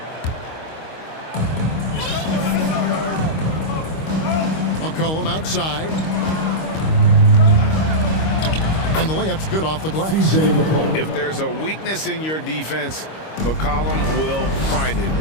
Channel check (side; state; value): right; late; 25 ms